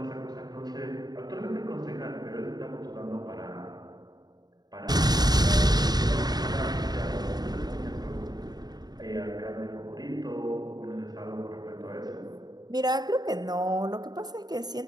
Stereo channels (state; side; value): late; left; 0.19 ms